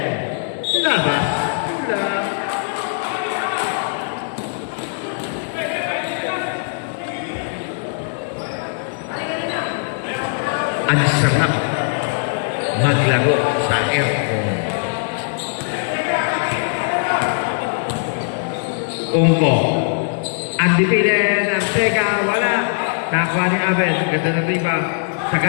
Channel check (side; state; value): right; silent; digital silence